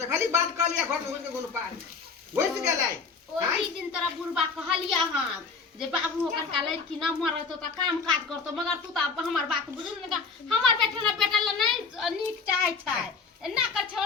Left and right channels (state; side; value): quieter; right; 4.9 dB